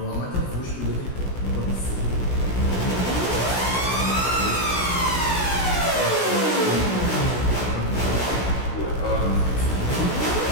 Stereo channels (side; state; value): right; late; 16 ms